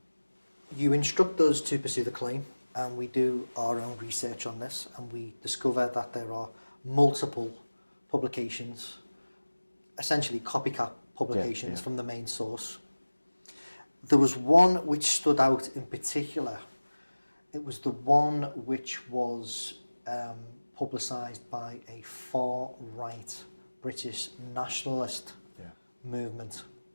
you instruct us to pursue the claim, and we do our own research on this, and we discover that there are multiple publications, essentially copycat publications from the main source. There was one which stood out in particular. It was the one which was publicised by a far-right British nationalist movement,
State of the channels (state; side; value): inverted; both; correlation -1.00